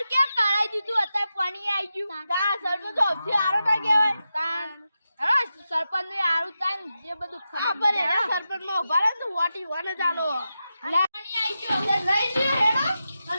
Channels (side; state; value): both; inverted; correlation -0.90